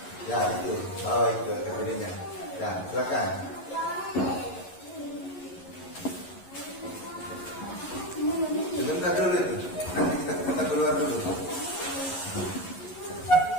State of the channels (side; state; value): right; late; 11 ms